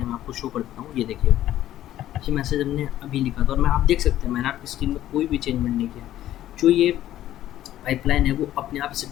हैं। मैं आपको शो कर देता हूँ, ये देखिए, ये मैसेज हमने अभी लिखा था और मैं आप देख सकते हैं मैंने आपकी स्क्रीन में कोई भी चेंजमेंट नहीं किया। जो ये पाइपलाइन है वो अपने आप इसे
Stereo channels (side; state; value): right; quieter; 13.0 dB